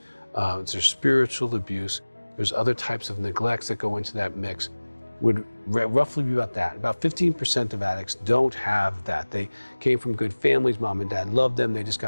there's spiritual abuse. There's other types of neglects that go into that mix. Would roughly be about that. About 15% of addicts don't have that. They came from good families, mom and dad loved them, they just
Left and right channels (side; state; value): both; inverted; correlation -1.00